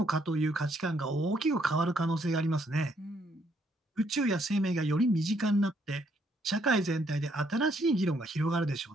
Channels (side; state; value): both; normal; correlation 0.71